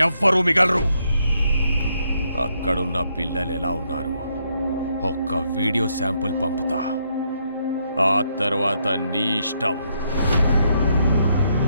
ఎవ్వరూ మిగలరు. అక్కడున్న పిల్లలు ఎలా ఉన్నారు ఒక్క వీడియో శాంపుల్ పంపుతా. ఆ తర్వాత నీ ఇష్టం.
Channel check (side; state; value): both; inverted; correlation -0.76